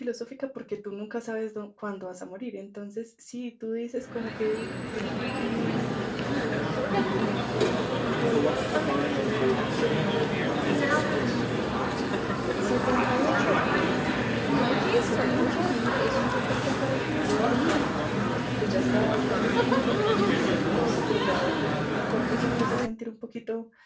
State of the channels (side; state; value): both; identical; correlation 1.00